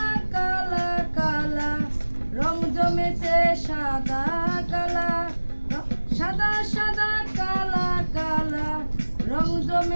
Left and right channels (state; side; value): inverted; both; correlation -1.00